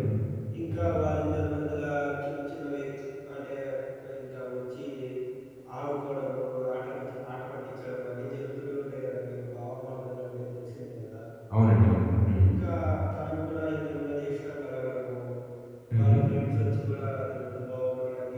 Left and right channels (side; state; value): both; identical; correlation 1.00